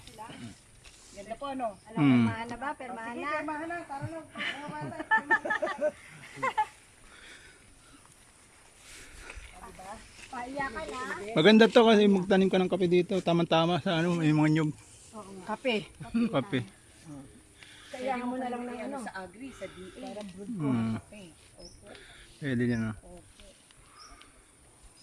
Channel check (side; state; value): both; identical; correlation 1.00